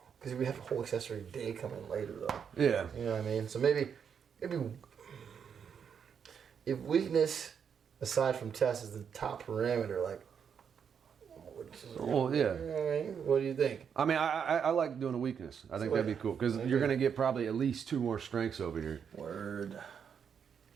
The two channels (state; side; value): quieter; left; 7.3 dB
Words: because we have a whole accessory day coming later, though. Yeah. You know what I mean? So maybe if weakness, aside from test, is the top parameter, like. Well, yeah. You know what I mean? What do you think? I mean, I like doing a weakness. I think that'd be cool because you're gonna get probably at least 2 more strengths over here. Word.